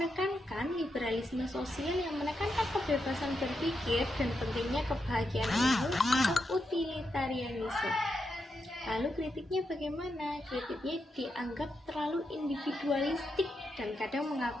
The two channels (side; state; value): both; normal; correlation 0.85